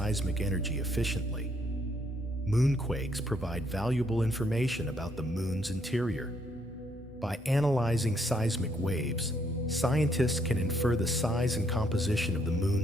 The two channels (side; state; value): both; normal; correlation 0.71